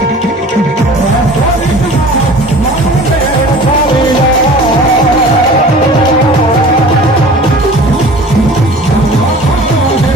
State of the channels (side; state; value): both; normal; correlation 0.43